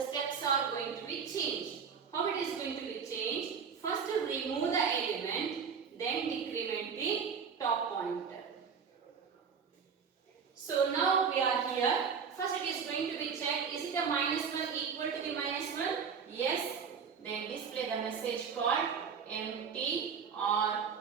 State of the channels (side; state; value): left; quieter; 6.4 dB